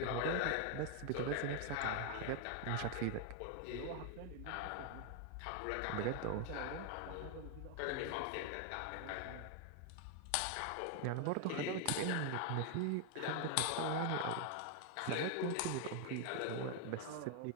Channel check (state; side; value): different; both; correlation 0.00